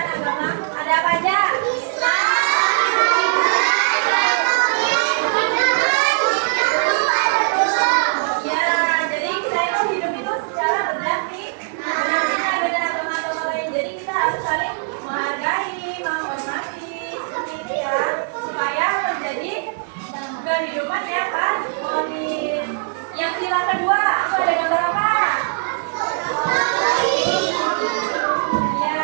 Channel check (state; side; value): silent; left; 65 dB below the other